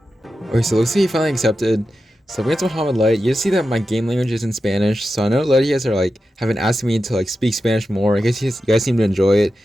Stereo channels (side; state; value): both; normal; correlation 0.91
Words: Okay, so looks like he finally accepted. So against Mohamed Light, you see that my game language is in Spanish. So I know a lot of you guys are like haven't asked me to like speak Spanish more. I guess you guys seem to enjoy it.